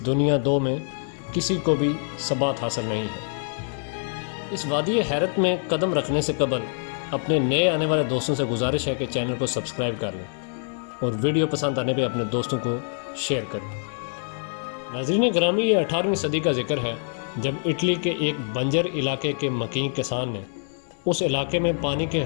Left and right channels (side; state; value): right; silent; digital silence